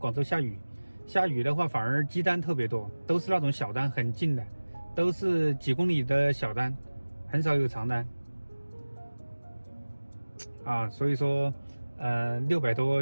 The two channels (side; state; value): both; inverted; correlation -1.00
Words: 州下雨的话反而积单特别多，都是那种小单很近的，都是几公里的小单，很少有长单啊。所以说600多